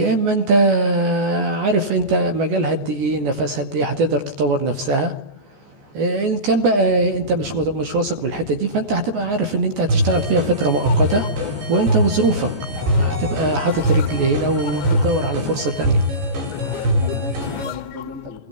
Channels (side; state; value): left; late; 14 ms